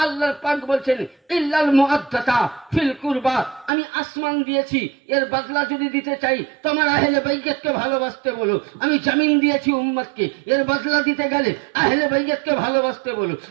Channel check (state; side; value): drops out; left; at 3.7 s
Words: আল্লাহ পাক বলছেন, ইল্লাল মুআদ্দাতা ফিল কুরবা, আমি আসমান দিয়েছি, এর বদলা যদি দিতে চাই তোমার আহলে বাইতকে ভালোবাসতে বলো। আমি জমিন দিয়েছি উম্মতকে, এর বদলা দিতে গেলে আহলে বাইতকে ভালোবাসতে বলো।